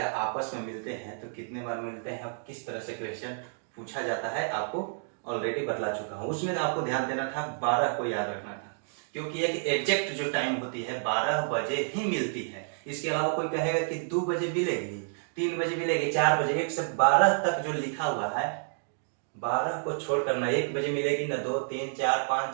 आपस में मिलते हैं तो कितने बार मिलते हैं, किस तरह से क्वेश्चन पूछा जाता है आपको ऑलरेडी बतला चुका हूँ। उसमें आपको ध्यान देना था, 12 को याद रखना था, क्योंकि एक एग्जैक्ट जो टाइम होती है 12 बजे ही मिलती है। इसके अलावा कोई कहेगा कि 2 बजे मिलेगी, 3 बजे मिलेगी, 4 बजे, 1 से 12 तक जो लिखा हुआ है 12 को छोड़कर ना 1 बजे मिलेगी, ना 2, 3, 4,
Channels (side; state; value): left; silent; digital silence